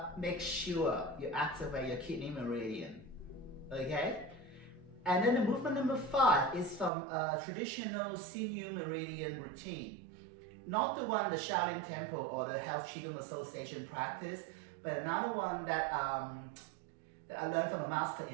make sure you activate your kidney meridian, okay? And then the movement number 5 is from a traditional senior Meridian routine. Not the one the Shaolin Temple or the Health Qigong Association practice, but another one that I learned from a master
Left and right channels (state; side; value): drops out; left; at 6.9 s